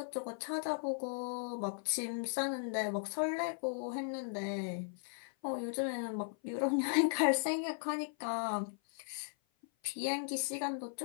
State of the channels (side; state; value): right; silent; 53 dB below the other